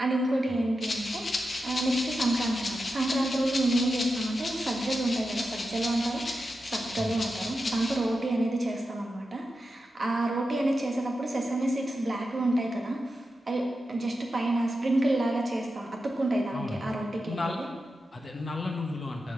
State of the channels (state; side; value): normal; both; correlation 0.90